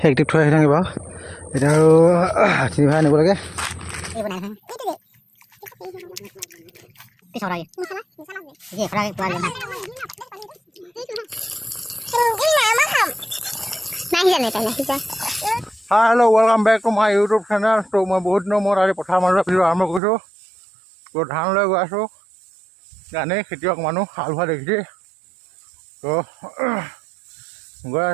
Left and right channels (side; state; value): left; drops out; at 20.0 s